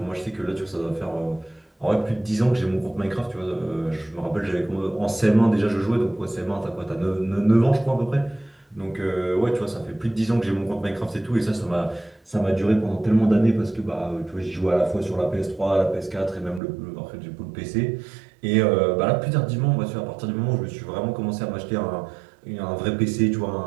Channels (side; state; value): left; drops out; at 16.6 s